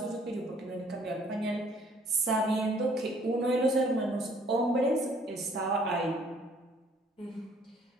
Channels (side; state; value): both; normal; correlation 0.60